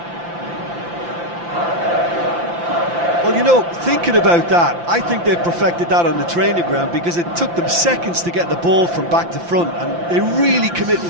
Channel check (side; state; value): left; late; 5.8 ms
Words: Well, you know, thinking about that, I think they've perfected that on the training ground because it took them seconds to get the ball from back to front, and they really commit